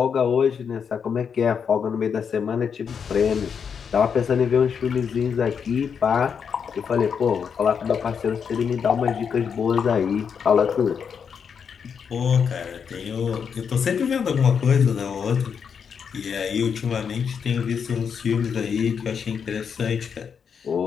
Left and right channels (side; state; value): right; quieter; 6.8 dB